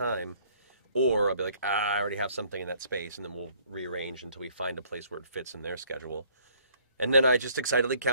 Or I'll be like, I already have something in that space, and then we'll rearrange until we find a place where it fits in their schedule. And then I just excitedly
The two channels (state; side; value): inverted; both; correlation -0.60